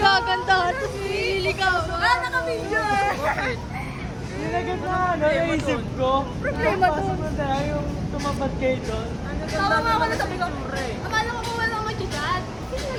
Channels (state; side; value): identical; both; correlation 1.00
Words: Tapos nililigaw. Naka-video eh. Nilagay na naisip ko. Problema to. Pasok na tayo yung tumapat kayo doon. Tawa nga ako na sabi ko. Akala ko kung walang mag-chat.